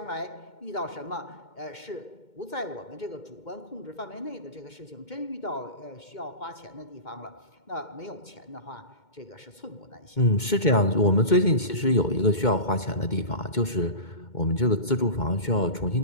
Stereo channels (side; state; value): right; late; 2.2 ms